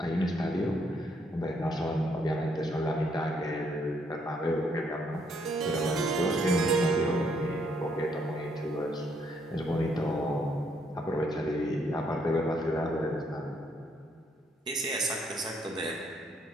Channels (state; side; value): normal; both; correlation 0.71